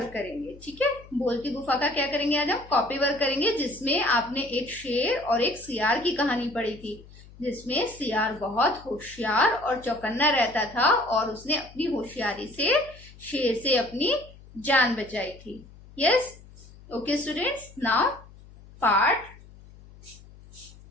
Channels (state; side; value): noise; left; hum, 21 dB below the sound